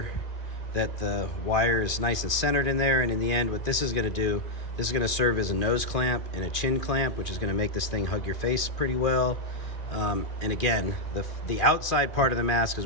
that the wire is nice and centered in there. And in the end, what this is going to do, this is going to serve as a nose clamp and a chin clamp, which is going to make this thing hug your face pretty well. And again, the outside part of the mask is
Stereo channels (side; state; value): right; late; 2.4 ms